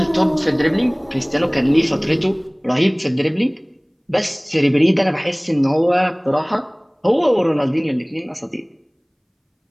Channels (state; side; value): identical; both; correlation 1.00